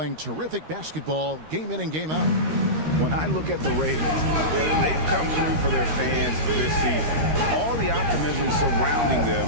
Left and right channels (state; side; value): late; left; 13 ms